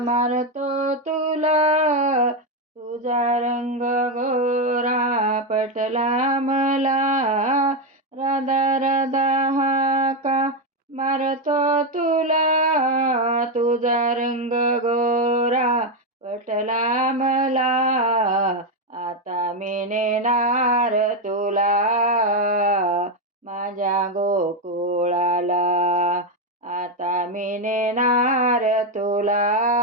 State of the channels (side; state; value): both; normal; correlation 0.06